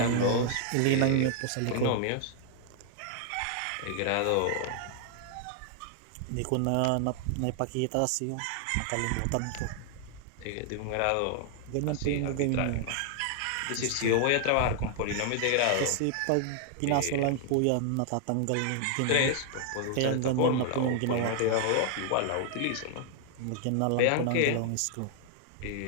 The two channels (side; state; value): both; different; correlation 0.00